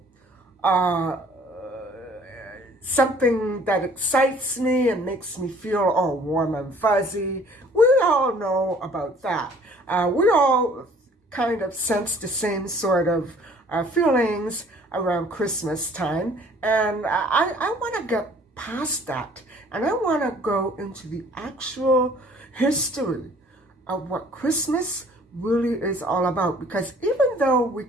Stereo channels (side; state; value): both; normal; correlation 0.55